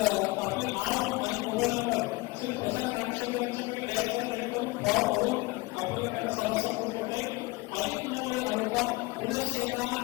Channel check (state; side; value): quieter; right; 23.9 dB